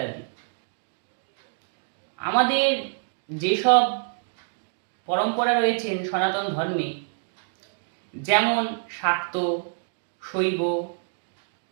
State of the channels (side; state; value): left; silent; digital silence